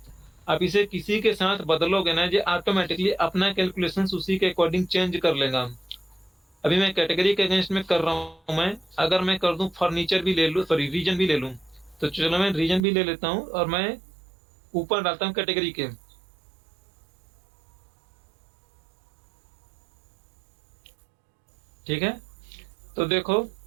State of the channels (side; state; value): left; drops out; at 12.8 s